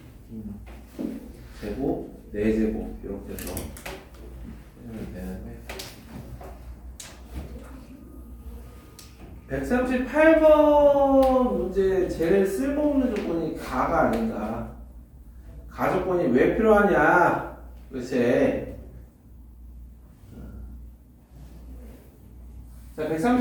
제곱, 4제곱 이렇게 해서 하면 되는데 138번 문제 제일 쓸모없는 조건이 가가 아닌가. 가 조건이 왜 필요하냐 도대체. 자,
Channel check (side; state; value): both; identical; correlation 1.00